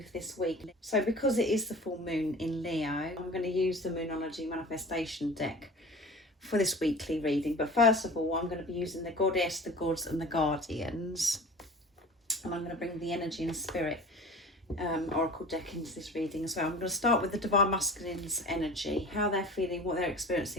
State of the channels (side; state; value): both; normal; correlation 0.40